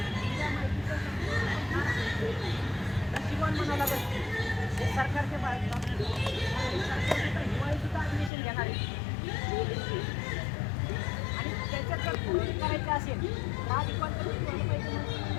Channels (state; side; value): drops out; right; at 8.3 s